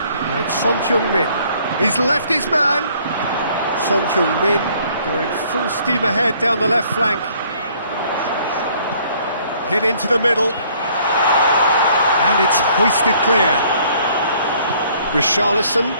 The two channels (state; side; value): inverted; both; correlation -0.61